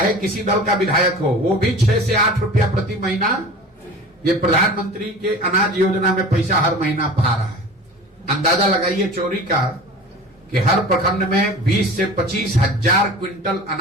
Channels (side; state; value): both; normal; correlation 0.38